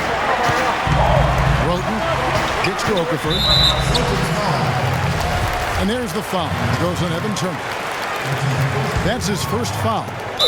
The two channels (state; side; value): identical; both; correlation 1.00